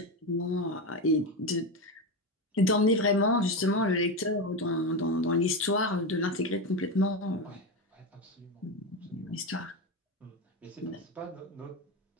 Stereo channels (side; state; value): both; normal; correlation 0.16